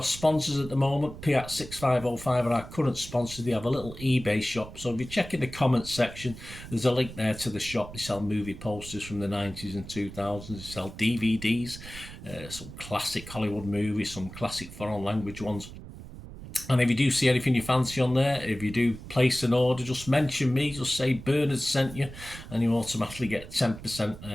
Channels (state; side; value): noise; right; rumble, 14 dB below the sound